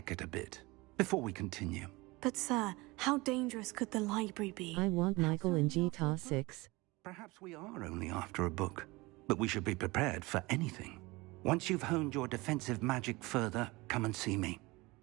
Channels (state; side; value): quieter; left; 22.8 dB